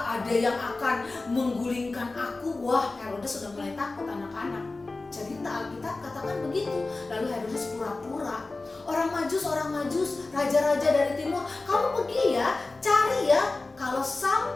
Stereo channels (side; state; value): right; quieter; 3.4 dB